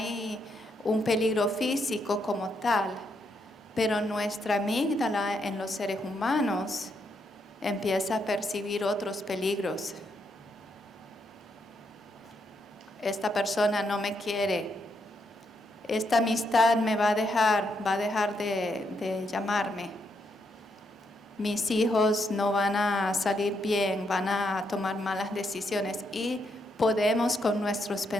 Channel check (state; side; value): normal; both; correlation 0.78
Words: un peligro físico como tal, pero nuestra amígdala en los seres humanos empieza a percibir otros peligros. Esta persona no me quiere, esta amistad me va a dejar de llamarme. Mis hijos no van a salir bien, van a tomar malas decisiones y podemos con nuestros